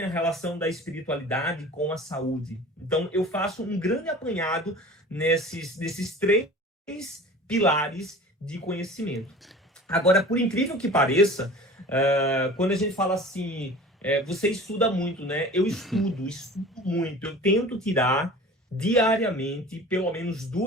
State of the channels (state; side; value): normal; both; correlation 0.40